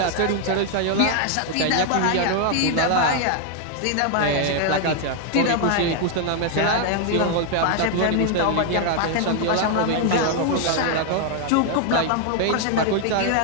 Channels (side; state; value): both; different; correlation 0.00